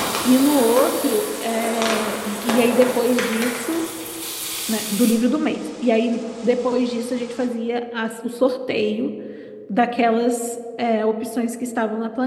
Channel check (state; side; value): identical; both; correlation 1.00